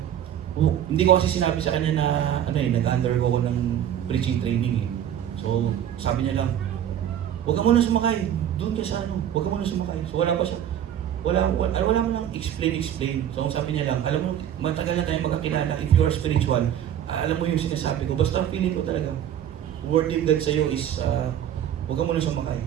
hindi ko kasi sinabi sa kanya na, nag-undergo ko ng preaching training eh. So, sabi niya lang, huwag ka muna sumakay, doon ka sa huwag ka muna sumakay. So, wala pa siya. wala mo lang explain. So sabi niya lang, alam mo, matagal na tayong magkakilala. If you are spiritual, alam mo yung sinasabi ko. Basta feeling ko talaga, word of God sa'yo is, huwag ka muna sumakay.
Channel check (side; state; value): left; quieter; 10.3 dB